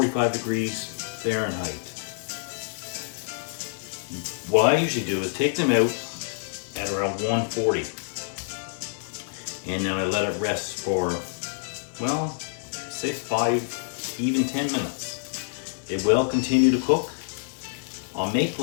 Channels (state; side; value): silent; right; 60 dB below the other